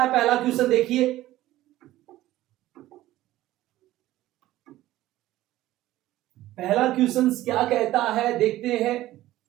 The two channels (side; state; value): left; quieter; 15.5 dB